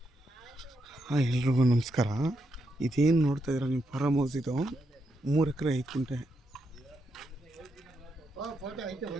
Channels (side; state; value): both; normal; correlation 0.82